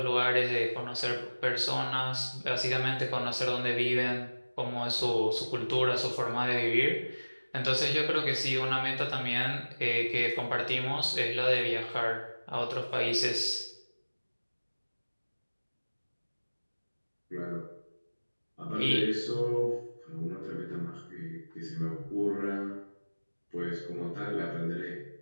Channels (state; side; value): inverted; both; correlation -1.00